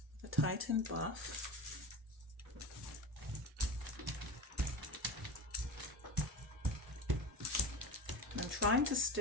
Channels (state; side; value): normal; both; correlation 0.27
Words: the Titan buff. I'm trying to